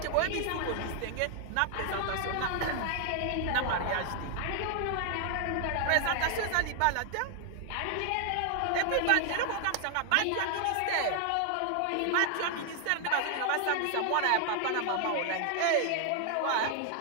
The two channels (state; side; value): different; both; correlation 0.00